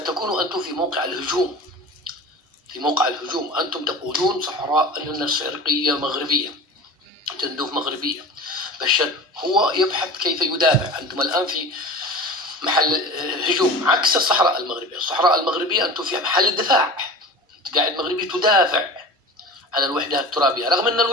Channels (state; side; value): normal; both; correlation 0.34